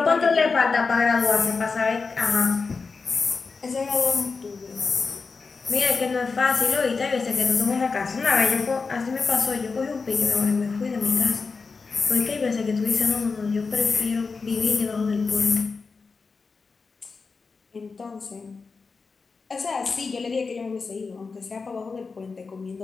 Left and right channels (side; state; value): right; quieter; 4.6 dB